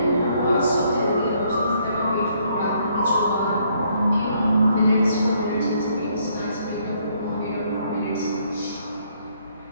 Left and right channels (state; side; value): inverted; both; correlation -0.69